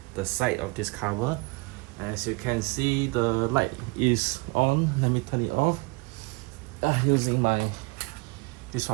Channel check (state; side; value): quieter; left; 27.0 dB